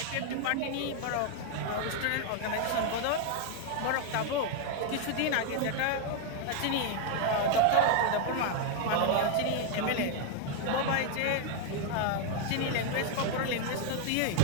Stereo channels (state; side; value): different; both; correlation 0.00